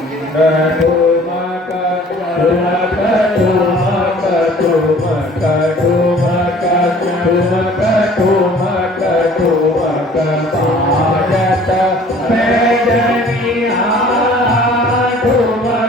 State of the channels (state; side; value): normal; both; correlation 0.51